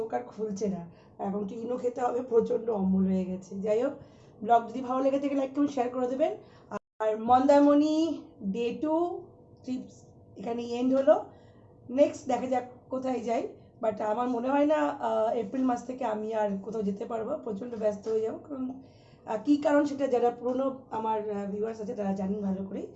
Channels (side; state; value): both; identical; correlation 1.00